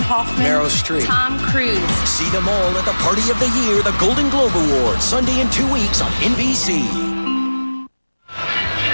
Hoffman, Meryl Streep, Tom Cruise. See them all at the Party of the Year, the Golden Globe Awards, Sunday in 2 weeks on NBC.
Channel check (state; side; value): inverted; both; correlation -1.00